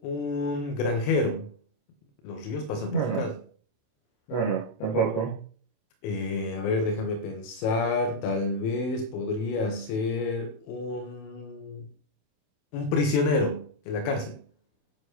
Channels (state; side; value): late; right; 27 ms